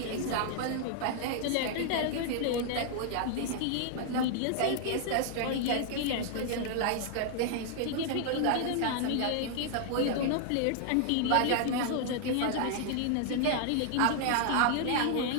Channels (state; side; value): different; both; correlation 0.00